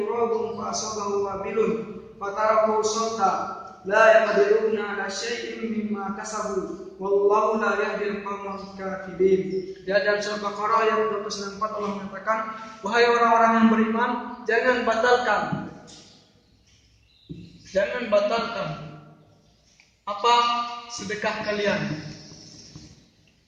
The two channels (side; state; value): both; identical; correlation 1.00